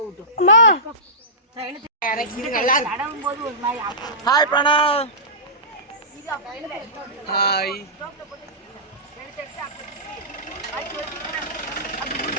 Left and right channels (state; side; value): normal; both; correlation -0.20